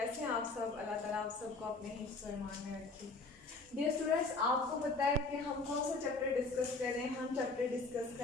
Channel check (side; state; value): right; quieter; 3.5 dB